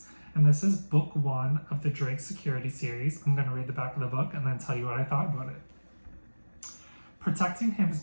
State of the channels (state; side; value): inverted; both; correlation -1.00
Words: And this is book one of the Drake Security series. I'm going to read the back of the book and then tell you what I thought about it. Protecting him is